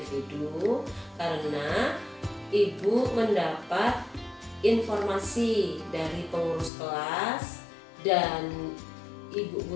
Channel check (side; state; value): right; drops out; at 6.7 s